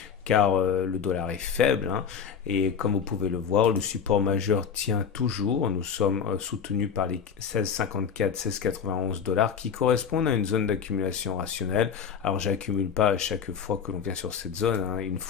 car le dollar est faible, hein, et comme vous pouvez le voir, le support majeur tient toujours. Nous sommes soutenus par les 16,54, 16,91 dollars qui correspondent à une zone d'accumulation rationnelle. Alors j'accumule pas à chaque fois que l'on vient sur cette zone, hein, une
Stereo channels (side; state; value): right; quieter; 7.0 dB